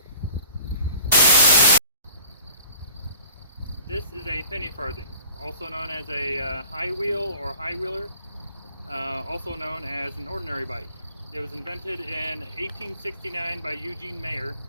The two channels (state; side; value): inverted; both; correlation -0.49